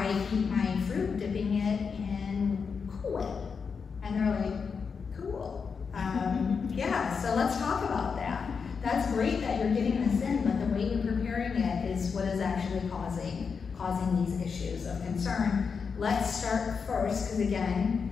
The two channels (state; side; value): quieter; right; 5.7 dB